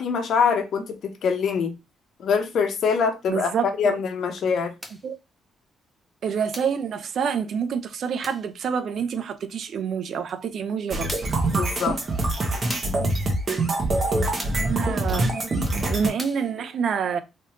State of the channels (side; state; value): both; normal; correlation 0.68